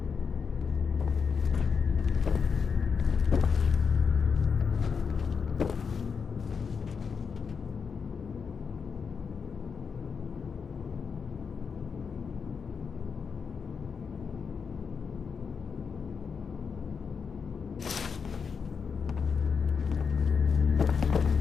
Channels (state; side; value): quieter; right; 5.9 dB